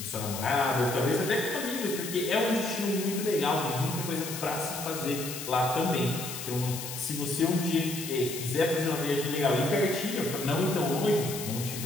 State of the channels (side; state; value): left; noise; hiss, 8 dB below the sound